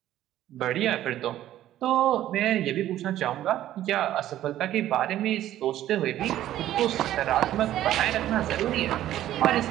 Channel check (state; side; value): quieter; left; 13.0 dB